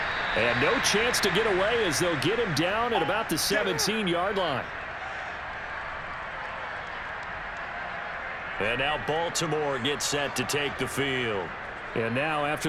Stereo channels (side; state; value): both; identical; correlation 1.00